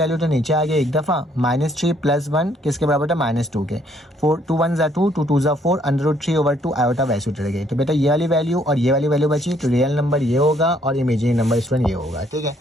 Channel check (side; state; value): both; normal; correlation 0.67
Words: तो नीचे आ गया एक दफ़ा, -3 + 1 किसके बराबर था -2 के, 2 1 ज़ा 2 2 2 ज़ा 4 √3/2 आयोटा वैसे उतर गई। तो बेटा ये वाली वैल्यू और ये वाली वैल्यू बची, तो रियल नंबर ये होगा और इमेजिनरी नंबर स्टूडेंट ये होगा, ठीक है।